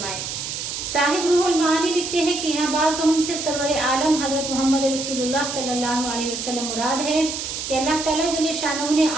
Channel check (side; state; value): right; noise; hiss, 5 dB below the sound